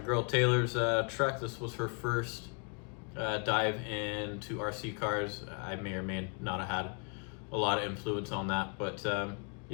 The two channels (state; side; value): quieter; right; 39.9 dB